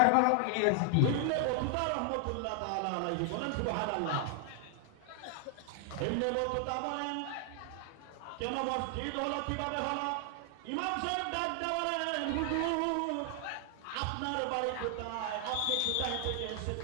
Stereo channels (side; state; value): both; different; correlation 0.00